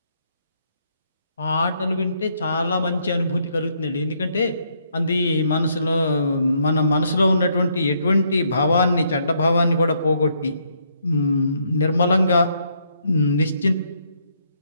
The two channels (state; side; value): inverted; both; correlation -0.72